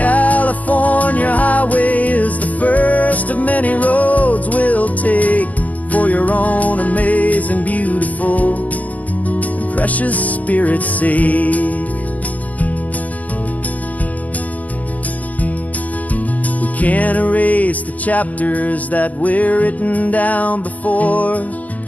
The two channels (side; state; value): right; late; 0.074 ms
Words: highway is the first of many roads we'll take for your own amazing, beautiful, and precious spirit's sake. We can't erase the chapters that we're written down before,